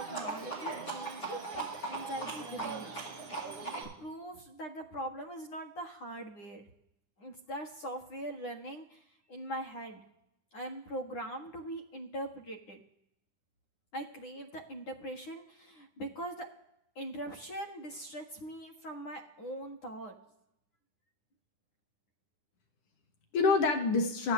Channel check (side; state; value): right; late; 9.8 ms